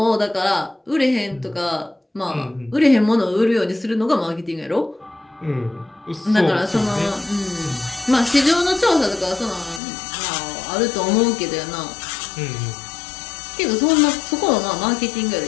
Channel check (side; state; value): right; drops out; at 9.8 s